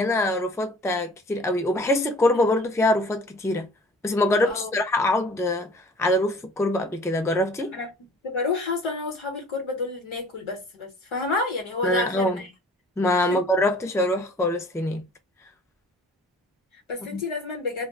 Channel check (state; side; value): normal; both; correlation 0.49